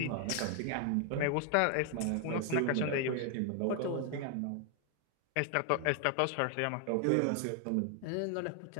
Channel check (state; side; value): different; both; correlation 0.00